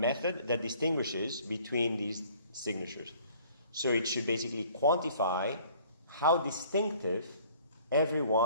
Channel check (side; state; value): both; inverted; correlation -0.54